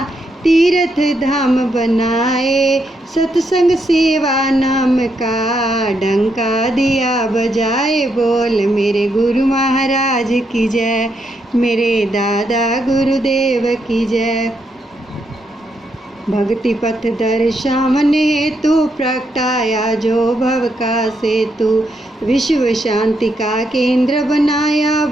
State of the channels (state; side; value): normal; both; correlation 0.79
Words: तीर्थ धाम बनाए, सत्संग सेवा नाम का डंका दिया बजाए। बोल मेरे गुरु महाराज की जय, मेरे दादा गुरुदेव की जय। भक्ति पथ दर्शावन हेतु, प्रगटाया जो भव का सेतु, विश्व शांति का केंद्र बनाया,